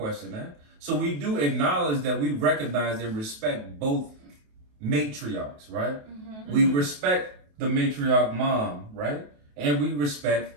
that. So we do acknowledge that we recognize and respect both matriarchs, right? Mm-hmm. We respect the matriarch mom, right? And we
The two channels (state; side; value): late; left; 28 ms